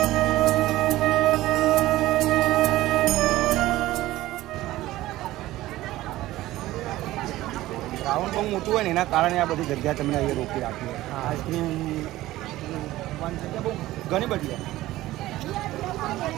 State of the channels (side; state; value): left; quieter; 16.4 dB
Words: રાઉન્ડ બહુ મોટું હોય ને એના કારણે આ બધી જગ્યા તમને અહીંયા રોકી રાખી હોય. આઈસ્ક્રીમ જગ્યા બહુ ઘણી બધી હોય.